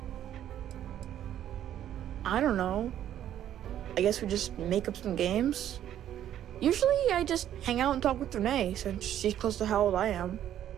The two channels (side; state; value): left; quieter; 11.1 dB